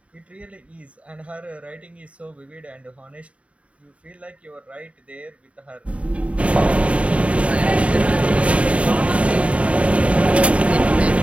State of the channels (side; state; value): left; late; 0.064 ms